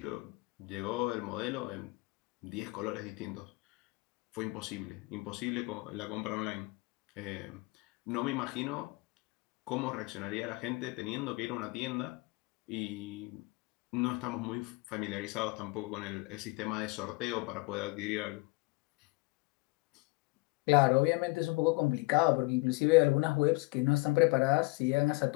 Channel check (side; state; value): right; quieter; 25.3 dB